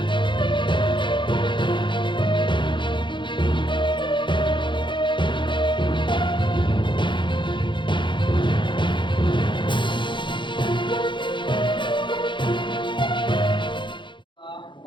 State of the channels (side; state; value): right; late; 0.23 ms